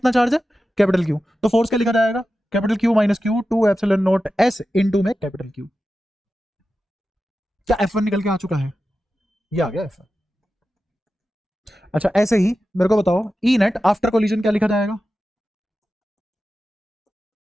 चार्ज है, कैपिटल Q। तो फोर्स क्या लिखा जाएगा, capital Q minus Q 2 epsilon naught S into में कैपिटल Q। क्या F1 निकल के आ चुका है? ये आ गया F1। अच्छा ऐसे ही मेरे को बताओ ई नेट आफ्टर कोलिजन क्या लिखा जाएगा?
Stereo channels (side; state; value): both; normal; correlation 0.93